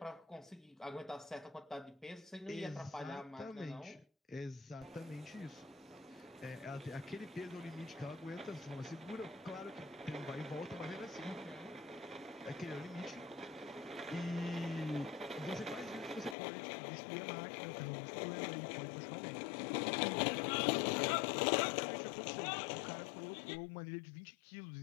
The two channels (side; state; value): right; drops out; at 16.4 s